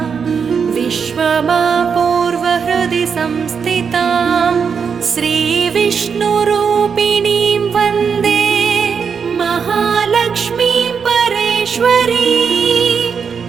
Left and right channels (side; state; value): left; quieter; 6.3 dB